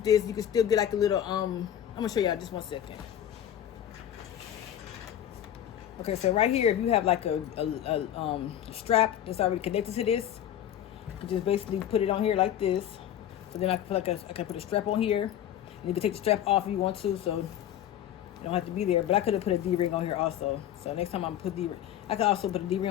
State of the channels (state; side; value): quieter; right; 10.8 dB